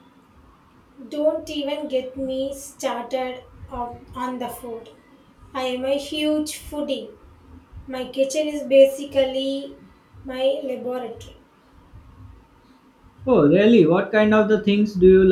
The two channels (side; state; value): both; identical; correlation 1.00